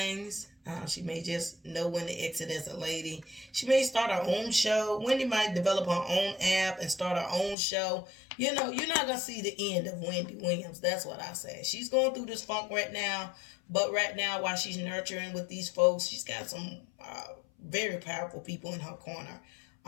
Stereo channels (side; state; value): right; drops out; at 7.6 s